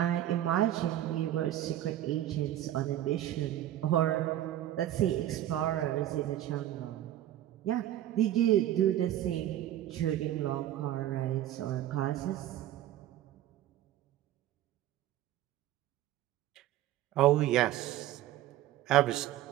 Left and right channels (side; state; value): left; quieter; 12.9 dB